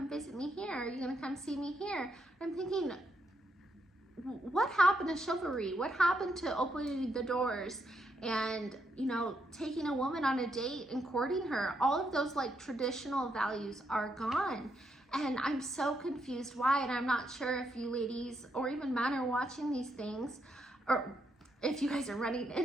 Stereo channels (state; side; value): normal; both; correlation 0.79